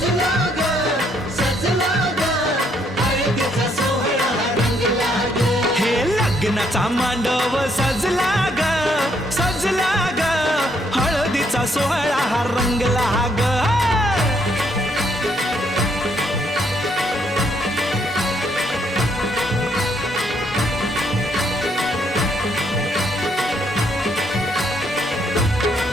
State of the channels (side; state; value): both; normal; correlation 0.71